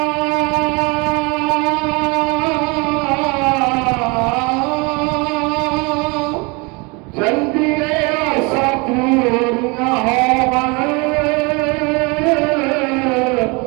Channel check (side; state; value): left; quieter; 28.8 dB